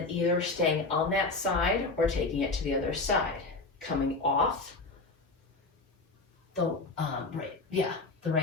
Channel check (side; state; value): right; quieter; 3.4 dB